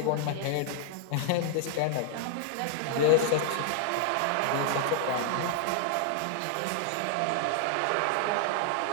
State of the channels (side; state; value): both; different; correlation 0.00